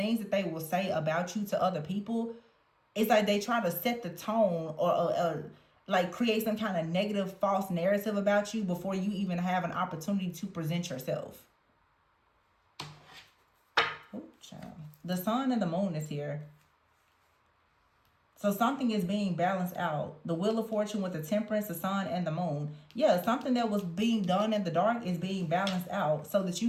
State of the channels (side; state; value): both; identical; correlation 1.00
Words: that they will say about you to other people, it's like they try to set the tone or like create some kind of negative false narrative about you before you even have an opportunity to present yourself. Oh, child. The sun and the moon is here. So something is being balanced out. The wheel of fortune with the temperance, the sun, and the moon. Yeah, something that was being done in the dark is being balanced out so that